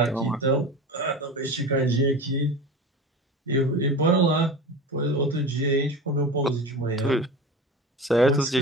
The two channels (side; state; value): both; normal; correlation 0.31